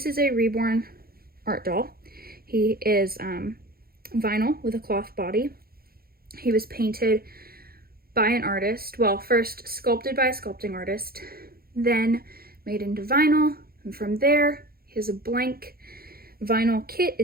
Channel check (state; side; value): late; left; 0.44 ms